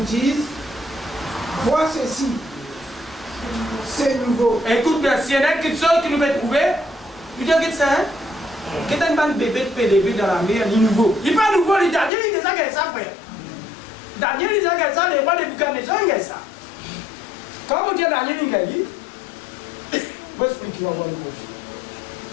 dise, vois ceci, c'est nouveau. Écoute bien, s'il y en a quelque chose que nous devons trouver, il dit que ça, hein? Que t'as un bébé de PDB dans la mer, il est nouveau. Il n'est pas nouveau, il est Daniel, il est déjà qu'il ça, frère. Daniel, il est déjà qu'il ça, les rois de Buchanan, il est ça. Quand vous dites Daniel, il est dit, je vais expliquer, on va voir le prochain.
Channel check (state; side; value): drops out; right; at 12.1 s